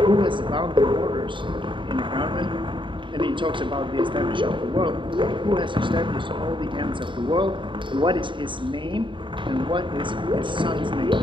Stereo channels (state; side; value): late; left; 0.24 ms